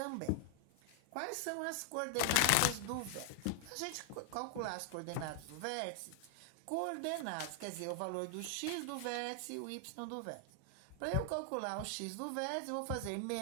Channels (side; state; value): both; different; correlation 0.00